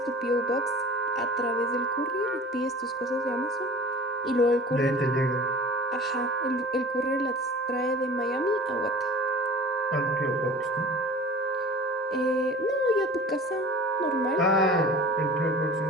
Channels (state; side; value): normal; both; correlation 0.42